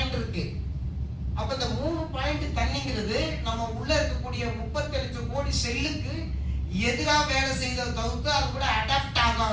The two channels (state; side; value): identical; both; correlation 1.00